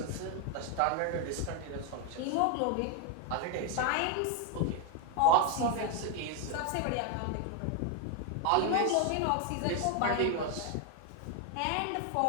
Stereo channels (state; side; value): different; both; correlation 0.01